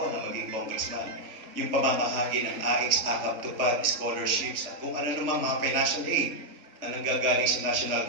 na maging congressman, yung pamamahagi ng AX, AKAP, tupad, scholarships, at kung ano naman mga financial aid na nanggagaling sa national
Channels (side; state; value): left; late; 3.3 ms